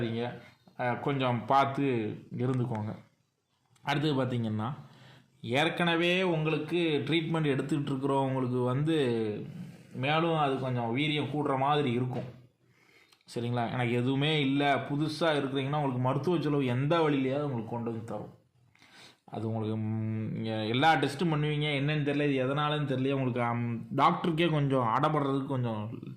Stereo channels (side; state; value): both; identical; correlation 1.00